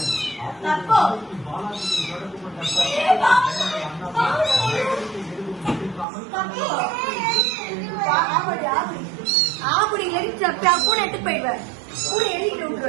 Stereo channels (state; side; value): drops out; left; at 6.1 s